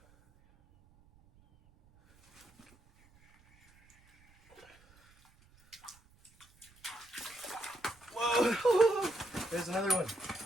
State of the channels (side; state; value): right; noise; rumble, 29 dB below the sound